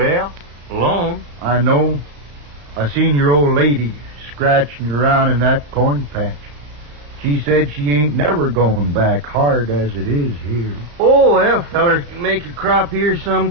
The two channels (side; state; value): left; late; 34 ms